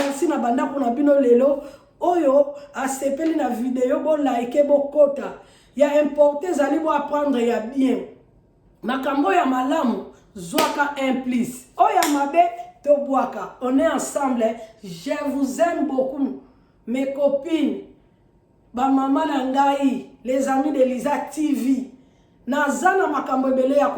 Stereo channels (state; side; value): identical; both; correlation 1.00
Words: na bandako na bino lelo oyo asepeli na video bo like bokota ya importe ezali bo apprendre ya bien makambo ya malamu zwaka implice oya mabe tobwaka. On est ensemble, je vous aime beaucoup mes copines, ba mama na ngai, les amis de Lisa TV. Nazana makambo ebele ya